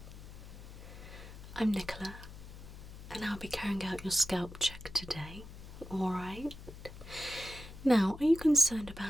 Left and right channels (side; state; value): left; noise; hum, 14 dB below the sound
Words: I'm Nicola, and I'll be carrying out your scalp check today. Alright. Now, are you concerned